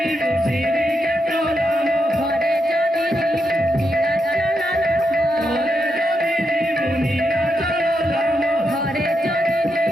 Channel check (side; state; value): both; normal; correlation 0.83